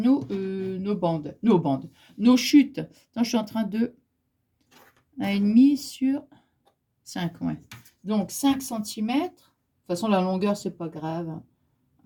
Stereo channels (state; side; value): identical; both; correlation 1.00